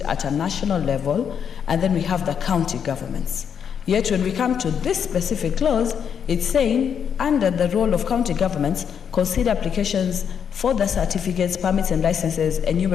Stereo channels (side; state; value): right; quieter; 7.7 dB